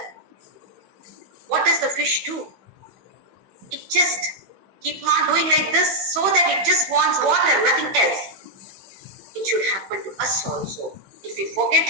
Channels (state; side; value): late; left; 16 ms